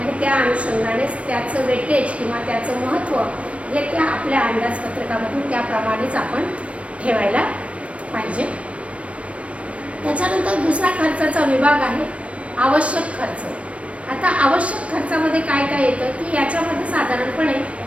त्या अनुषंगानेच त्याचं वेटेज किंवा त्याचं महत्त्व हे त्या आपल्या अंदाजपत्रकामधून त्याप्रमाणेच आपण ठेवायला पाहिजे. त्याच्यानंतर दुसरा खर्चाचा विभाग आहे आवश्यक खर्च. आता आवश्यक खर्चामध्ये काय काय येतं की याच्यामध्ये साधारणपणे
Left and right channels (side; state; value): left; late; 0.063 ms